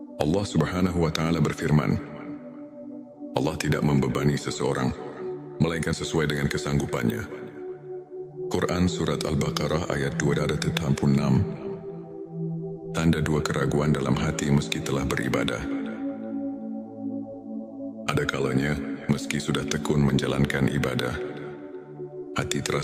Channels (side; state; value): both; identical; correlation 1.00